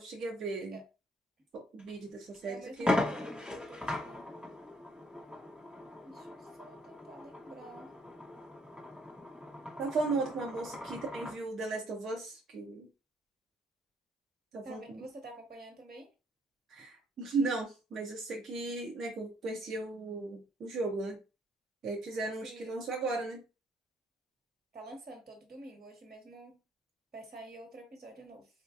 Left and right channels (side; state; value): both; normal; correlation 0.66